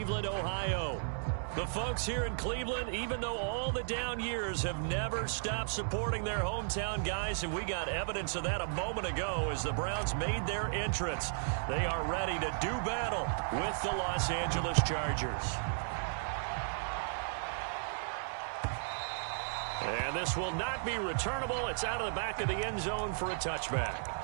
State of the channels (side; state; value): left; silent; 55 dB below the other